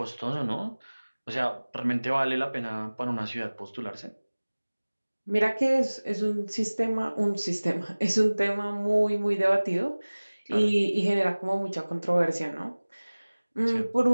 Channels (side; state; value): both; inverted; correlation -1.00